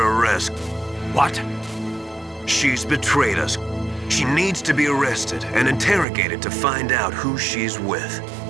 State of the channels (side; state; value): left; drops out; at 6.1 s